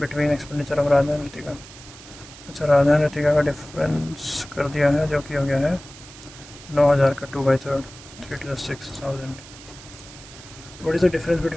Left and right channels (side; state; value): right; noise; hiss, 18 dB below the sound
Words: expenditure of Radha and Ritika. अच्छा, राधा एंड ऋतिका का डिफरेंस कर दिया है जो कि हो गया है 9,000 का 2/3 3 to the 6,000। What is the difference